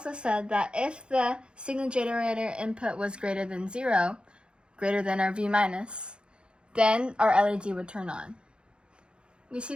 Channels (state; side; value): late; left; 0.054 ms